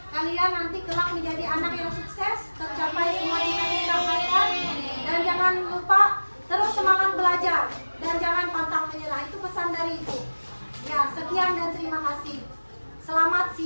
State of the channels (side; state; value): both; inverted; correlation -1.00